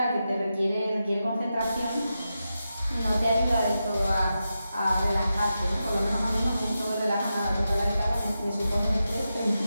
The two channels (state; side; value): inverted; both; correlation -0.89